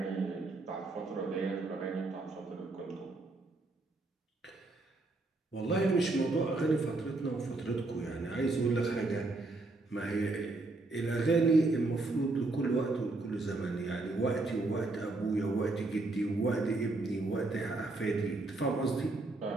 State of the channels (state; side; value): quieter; left; 3.2 dB